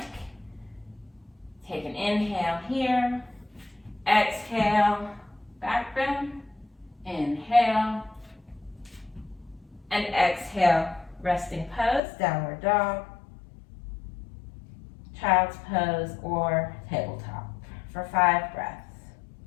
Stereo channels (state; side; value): drops out; right; at 12.0 s